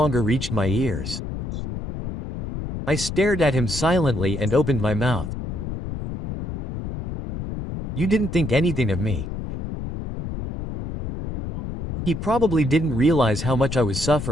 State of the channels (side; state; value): left; noise; rumble, 6 dB below the sound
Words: reached my ears. I stared at him silently and opened my mouth. "You didn't think anything of me." He probably didn't realize how much I was